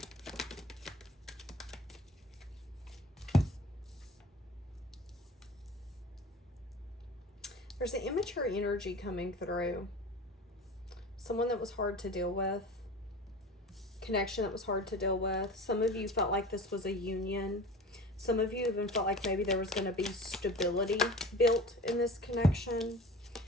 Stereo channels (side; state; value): both; normal; correlation 0.38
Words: There's an immature energy coming through. Someone that was hard to deal with. Connection that was hard to deal with. Some of you felt like this was a union. Some of you even felt like maybe there was going to be stability built in this connection.